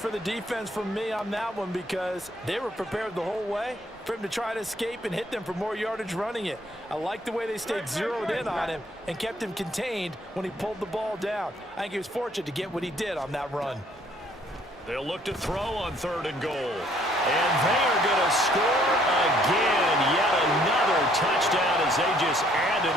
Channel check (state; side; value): normal; both; correlation 0.63